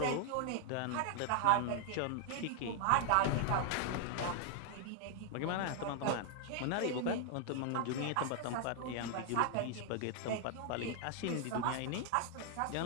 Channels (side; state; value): both; different; correlation 0.00